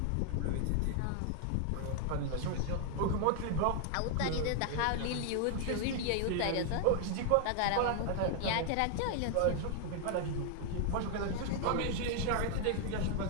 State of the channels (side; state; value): both; different; correlation 0.00